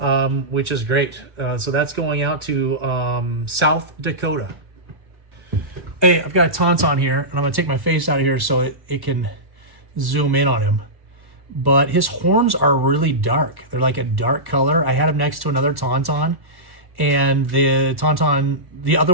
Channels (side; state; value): left; late; 1.1 ms